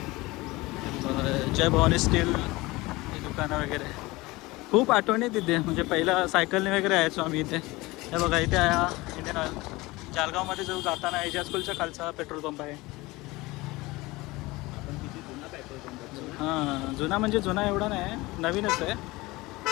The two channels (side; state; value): right; quieter; 21.3 dB